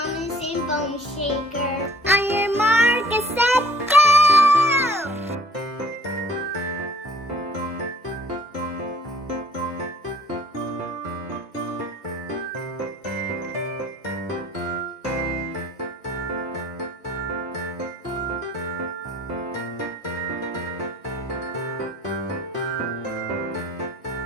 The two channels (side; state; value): both; normal; correlation 0.56